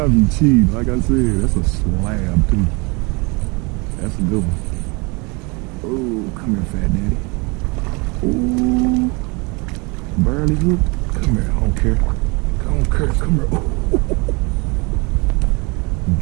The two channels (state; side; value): quieter; left; 28.8 dB